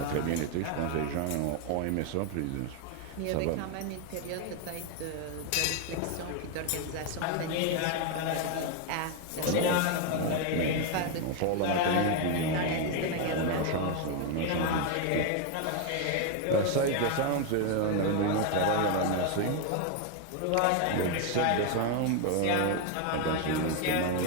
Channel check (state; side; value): different; both; correlation 0.01